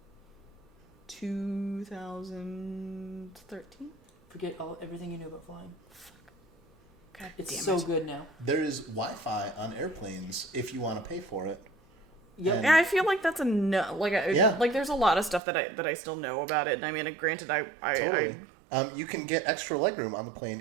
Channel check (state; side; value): drops out; left; at 15.4 s